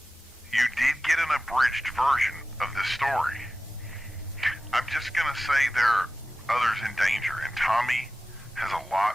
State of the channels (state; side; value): normal; both; correlation 0.95